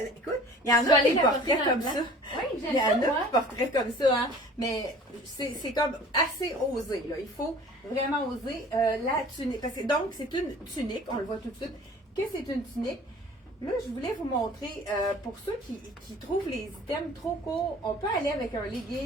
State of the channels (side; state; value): both; normal; correlation 0.47